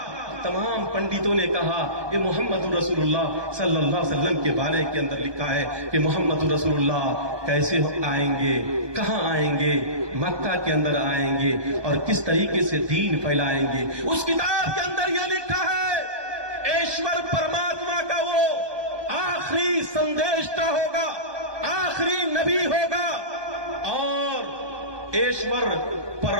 تمام پنڈتوں نے کہا کہ محمد رسول اللہ صلی اللہ علیہ وسلم کے بارے کے اندر لکھا ہے کہ محمد رسول اللہ کیسے آئیں گے، کہاں آئیں گے، مکہ کے اندر آئیں گے اور کس طریقے سے دین پھیلائیں گے۔ اس کتاب کے اندر یہ لکھا ہے ایشور پرماتما کا وہ آخری سندیشتا ہوگا، آخری نبی ہوگا، اور ایشور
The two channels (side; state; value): left; late; 1.2 ms